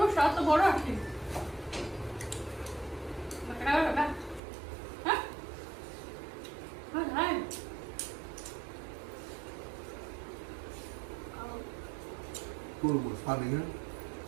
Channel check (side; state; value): left; drops out; at 4.4 s